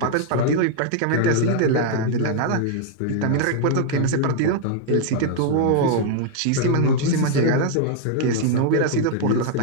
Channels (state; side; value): different; both; correlation 0.00